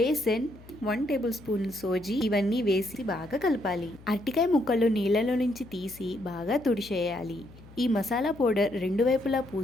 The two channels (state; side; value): noise; left; hum, 21 dB below the sound